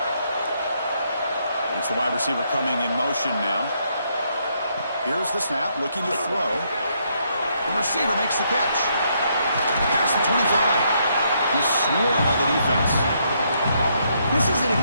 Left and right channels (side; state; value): both; inverted; correlation -0.74